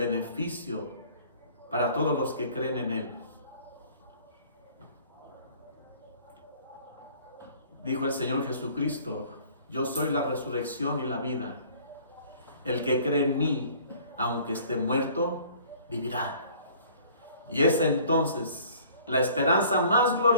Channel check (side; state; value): both; inverted; correlation -0.52